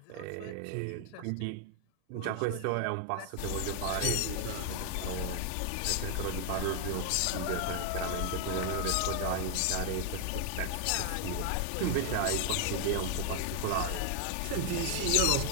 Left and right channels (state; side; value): different; both; correlation 0.00